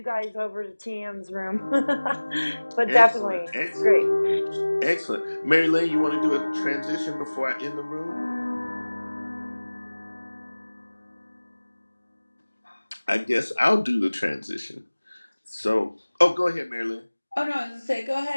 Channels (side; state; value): both; inverted; correlation -1.00